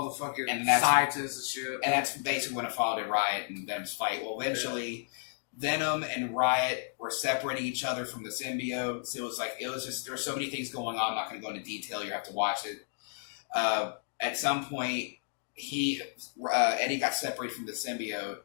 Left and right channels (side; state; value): right; silent; digital silence